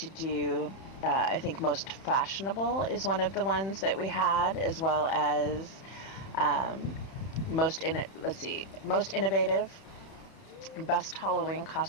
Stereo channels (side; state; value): right; late; 31 ms